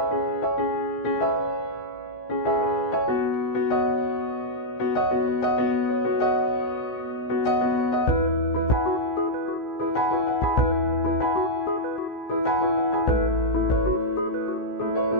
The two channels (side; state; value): right; late; 16 ms